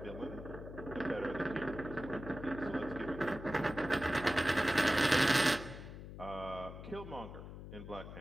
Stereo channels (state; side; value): noise; left; hum, 11 dB below the sound